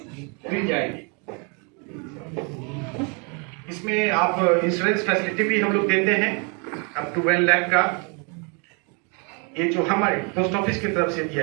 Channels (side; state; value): left; quieter; 34.5 dB